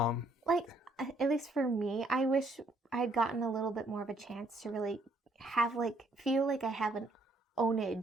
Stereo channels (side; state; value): both; normal; correlation 0.68